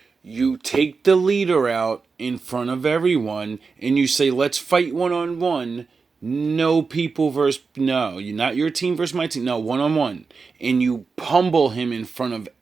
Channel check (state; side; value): quieter; left; 4.7 dB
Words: You take the leader out in front of everyone and you say, let's fight one-on-one. No people versus... No, you're not your team versus my team. No, one-on-one. And you pummel him in front of